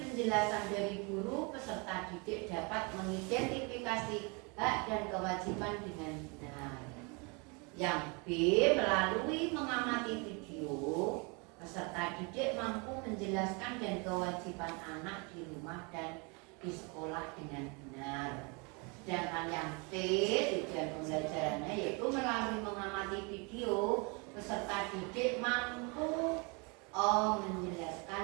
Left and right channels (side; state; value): left; quieter; 31.2 dB